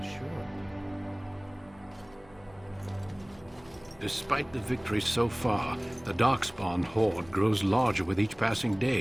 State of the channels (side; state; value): left; noise; hum, 26 dB below the sound